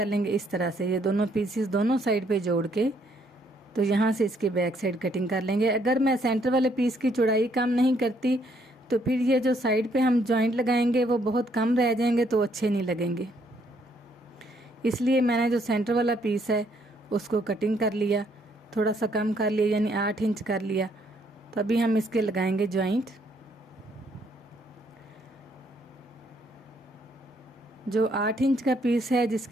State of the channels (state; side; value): normal; both; correlation 0.69